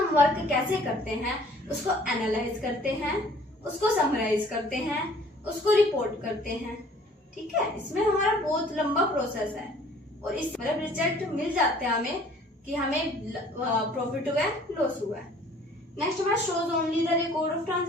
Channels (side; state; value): both; normal; correlation 0.54